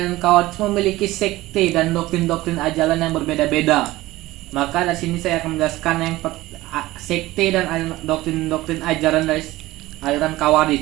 Khawarij memiliki sekte dan doktrin-doktrin ajaran yang berbeda-beda. Maka di sini saya akan menjelaskan yang sekte dan doktrin-doktrin ajaran dari aliran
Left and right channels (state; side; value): quieter; left; 17.9 dB